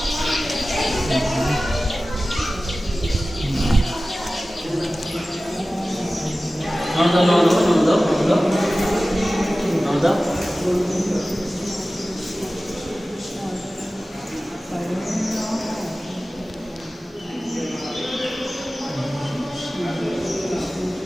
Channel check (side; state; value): both; normal; correlation 0.96